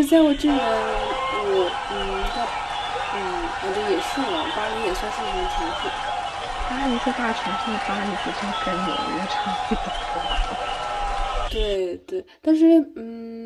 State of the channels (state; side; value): identical; both; correlation 1.00